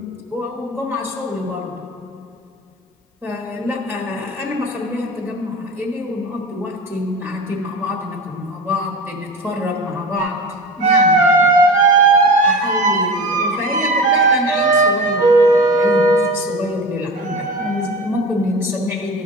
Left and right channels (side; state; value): both; normal; correlation 0.32